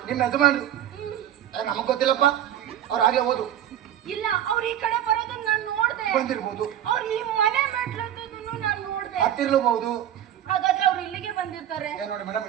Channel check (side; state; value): left; quieter; 11.1 dB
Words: ನಿಮ್ಮ ಯಜಮಾನ್ರು? ನಮಗ್ ಗೊತ್ತಿಲ್ಲಪ್ಪ, ಅವ್ರು ಆಗ್ಲೇ ಹೋದ್ರು. ಇಲ್ಲ, ಅವ್ರು ಈ ಕಡೆ ಬರೋದನ್ನ ನಾನು ನೋಡ್ದೆ. ಬಂದಿರ್ಬೋದು. ಅವ್ರು ಈ ಮನೆ ಮೆಟ್ಲನ್ನು ನಾನು ನೋಡ್ದೆ. ಹತ್ತಿರ್ಲಬಹುದು. ಹಾಗಾದ್ರೆ ಅವ್ರು ಇಲ್ಲಿಗೆ ಬಂದಿರ್ತಾರೆ. ನೋಡಿ ಮೇಡಮ್,